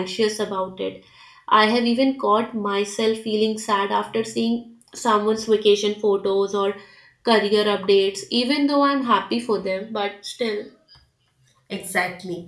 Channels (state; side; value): identical; both; correlation 1.00